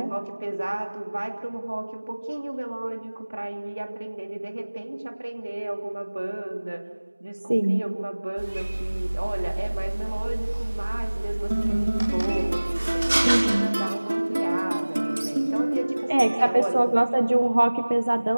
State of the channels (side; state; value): both; inverted; correlation -1.00